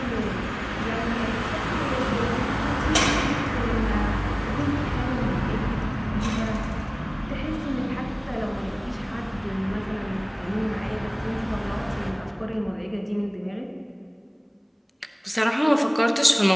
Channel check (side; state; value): both; identical; correlation 1.00